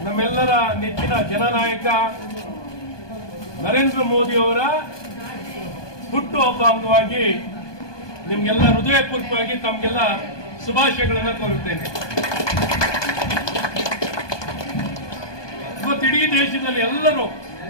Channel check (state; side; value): late; right; 1.2 ms